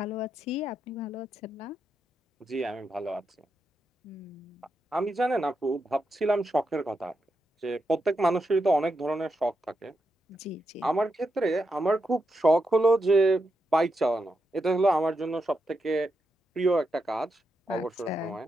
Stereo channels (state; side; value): normal; both; correlation 0.85